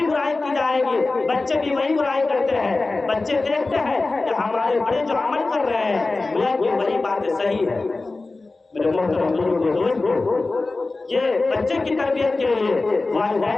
برائی کی جائے گی بچے بھی وہی برائی کرتے ہیں۔ بچے دیکھتے ہیں کہ ہمارے بڑے جو عمل کر رہے ہیں یہ وہی باتیں صحیح ہے۔ میرے محترم دوستو، یہ بچے کی تربیت کے لیے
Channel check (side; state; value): right; quieter; 3.4 dB